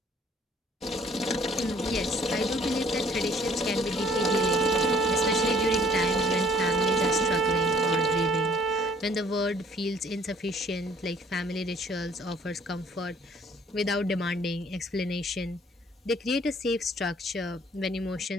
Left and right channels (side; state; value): both; normal; correlation 0.58